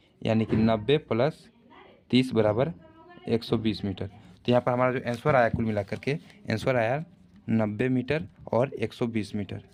90 प्लस 30 बराबर 120 मीटर। तो यहाँ पर हमारा जो आंसर आया कुल मिलाकर के आंसर आया 90 मीटर और 120 मीटर।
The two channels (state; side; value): identical; both; correlation 1.00